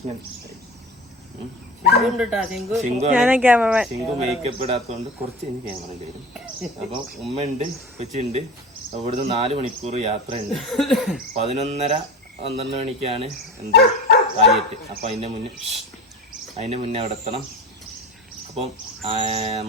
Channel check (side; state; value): both; normal; correlation 0.31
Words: ശിങ്കു മേക്കപ്പ് ഇടാത്തതുകൊണ്ട് കുറച്ച് കഴിഞ്ഞ് ക്യാമറ വരും. അപ്പം ഉമ്മയുണ്ട്, കൊച്ചുണ്ട്. ഇവിടുന്ന് 4 മണിക്കൂർ യാത്ര ഉണ്ട്. 11:30-12 മണിക്കാണ് എന്ത് കാലിയറ്റ്. അപ്പം അതിൻ്റെ മുന്നേ അവിടെ എത്തണം. അപ്പം